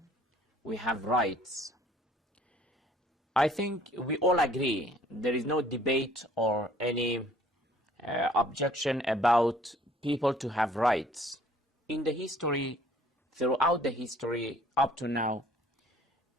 we have rights. I think we all agree. There is no debate or any objection about people to have rights. In the history, throughout the history up to now,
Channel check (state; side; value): normal; both; correlation 0.57